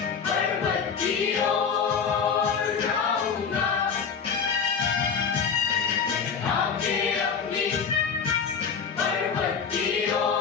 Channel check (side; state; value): right; quieter; 6.3 dB